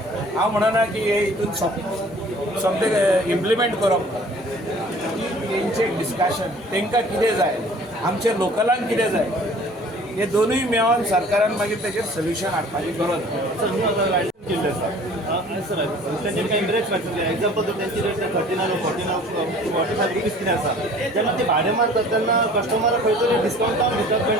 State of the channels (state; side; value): normal; both; correlation 0.50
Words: हांव म्हणना की हे हितून समथींग इम्प्लिमेंट करप, तेंचे डिस्कशन, तांकां कितें जाय, आमच्या लोकलांक कितें जाय, हे दोनूय मेळोन सरकारान मागीर तेचेर सोल्युशन हाडपाची गरज. केल्ले आसा सर, तेंचे काही रेट सांगता. एक्झाम्पल जर त्यांची रेट 39 45 रुपीज कितें आसा, जेन्ना ते भाडें मारतात तेन्ना कस्टमराक खंय तरी डिस्कावंटान दितात